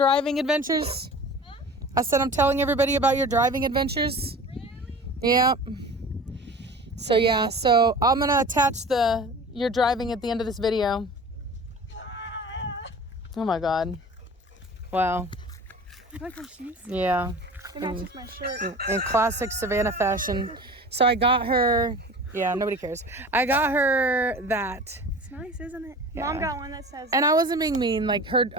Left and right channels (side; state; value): both; normal; correlation 0.39